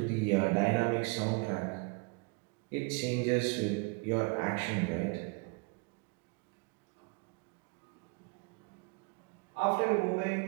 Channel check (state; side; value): quieter; left; 31.3 dB